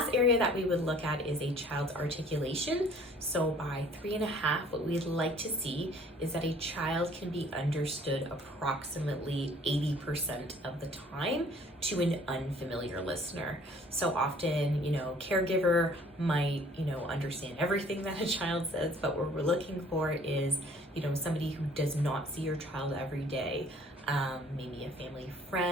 area that we would look at is a child's articulation. So by 3.5, what we'd like to see is that a child can be understood approximately 80% of the time to an unfamiliar listener. So often, caregiver might, understand everything that a child says, but what we're looking for is, somebody who does not see your child every day. Maybe a family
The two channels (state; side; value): normal; both; correlation 0.55